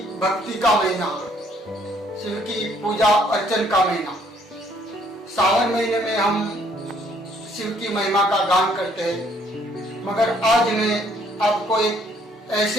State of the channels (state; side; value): normal; both; correlation 0.65